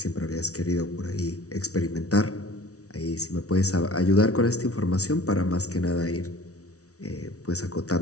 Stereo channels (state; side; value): late; right; 0.66 ms